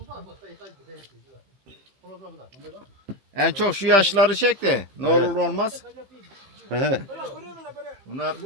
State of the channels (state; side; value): late; left; 15 ms